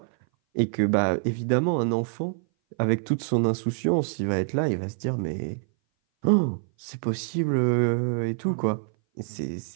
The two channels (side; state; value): left; silent; 58 dB below the other